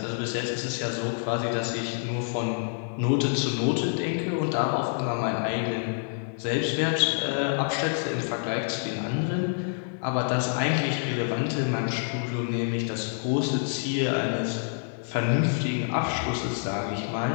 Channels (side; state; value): right; silent; 59 dB below the other